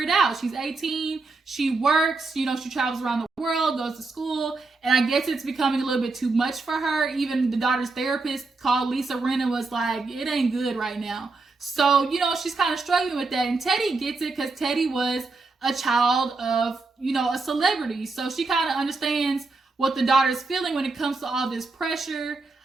out. She's 18. She works, she travels around the world, goes to school. And I guess it's becoming a little bit too much for her. Even the daughter's therapist called Lisa Rinna was like, it ain't good right now. So, she's kind of struggling with that. And Teddy gets it because Teddy was a child of, a celebrity. So she kind of understands what the daughter's feeling when it comes to all this pressure.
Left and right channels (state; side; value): quieter; left; 3.7 dB